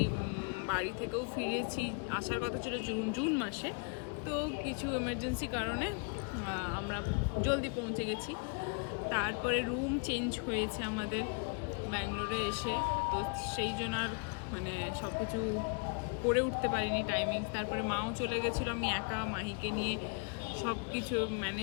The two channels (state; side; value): quieter; right; 36.1 dB